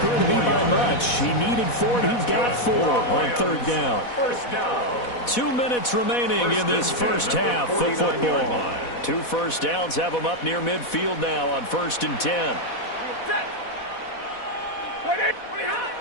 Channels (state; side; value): late; right; 4.1 ms